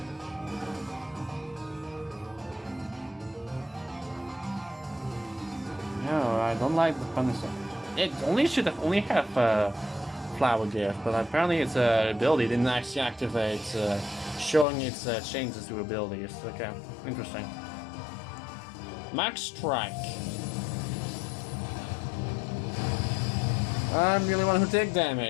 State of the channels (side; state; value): right; drops out; at 14.7 s